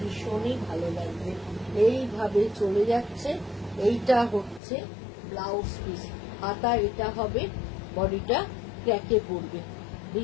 ভালো লাগবে। এইভাবে চলে যাচ্ছে। এইটা হচ্ছে ব্লাউজ পিস, হাতা এটা হবে, বডিটা ক্র্যাকে পড়বে,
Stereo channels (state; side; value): drops out; right; at 4.6 s